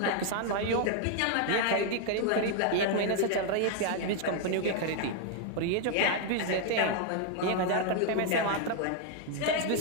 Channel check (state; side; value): different; both; correlation 0.00